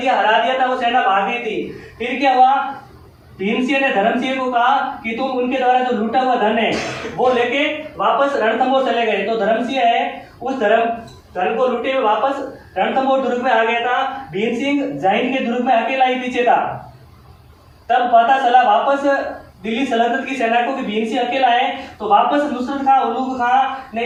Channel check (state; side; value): identical; both; correlation 1.00